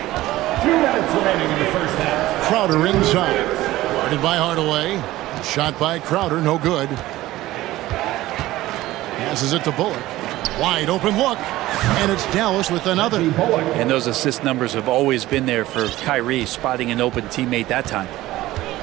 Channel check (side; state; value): left; quieter; 16.6 dB